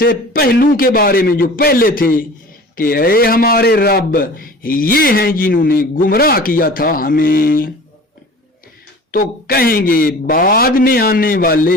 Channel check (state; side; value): normal; both; correlation 0.42